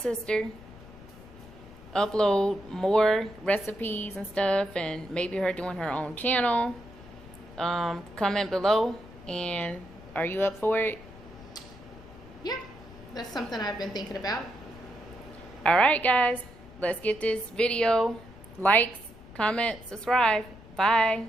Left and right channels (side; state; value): left; noise; rumble, 19 dB below the sound